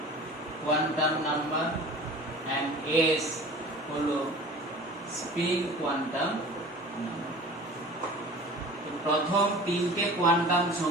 quantum number, and s হলো spin quantum number। প্রথম তিনটে quantum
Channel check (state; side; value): normal; both; correlation 0.41